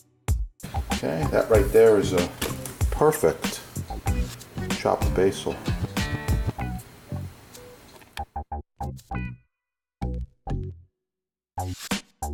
Okay, that right there is a perfect chopped basil.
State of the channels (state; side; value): identical; both; correlation 1.00